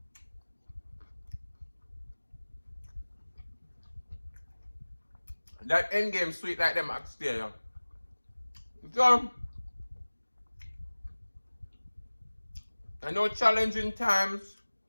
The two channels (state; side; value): inverted; both; correlation -1.00